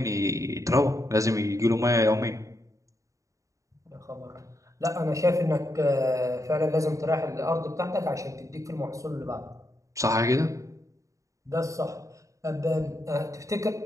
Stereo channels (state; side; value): late; left; 0.16 ms